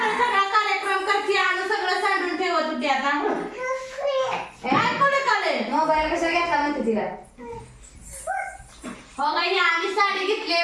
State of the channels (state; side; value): identical; both; correlation 1.00